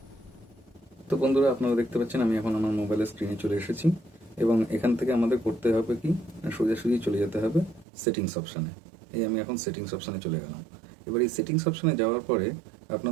তো বন্ধুরা, আপনারা দেখতে পাচ্ছেন আমি এখন আমার মোবাইলের স্ক্রিনে চলে এসেছি, এবং এখান থেকে আমাদের করতে হবে কি, সোজাসুজি চলে যেতে হবে সেটিংস অপশানে। এই আমি এখন সেটিংস অপশানে চলে গেলাম। এবার এই সেটিংস অপশানে যাওয়ার পরে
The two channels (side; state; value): left; drops out; at 7.9 s